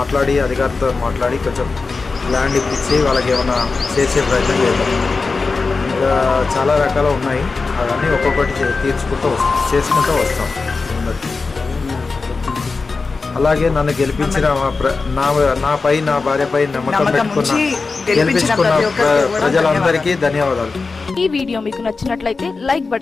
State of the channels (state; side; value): quieter; right; 4.2 dB